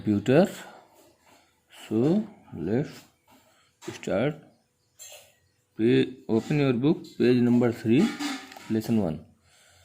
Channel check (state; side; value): identical; both; correlation 1.00